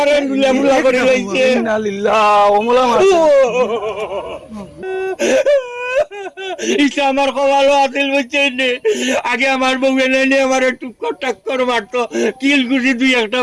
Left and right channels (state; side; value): identical; both; correlation 1.00